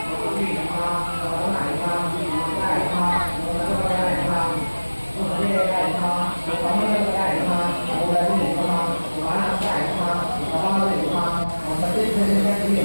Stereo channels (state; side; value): inverted; both; correlation -1.00